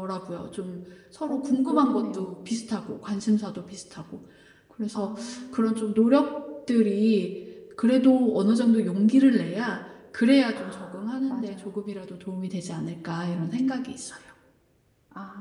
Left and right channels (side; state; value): both; identical; correlation 1.00